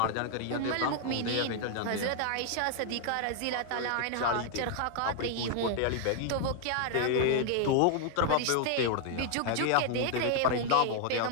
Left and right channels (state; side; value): different; both; correlation 0.00